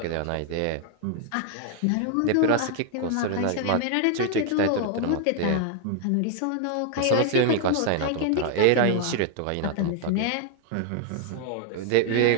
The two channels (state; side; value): different; both; correlation 0.00